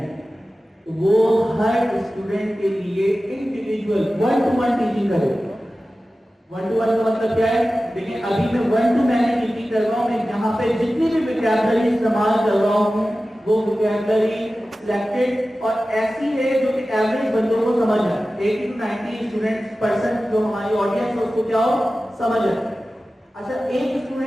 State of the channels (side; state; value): both; normal; correlation 0.95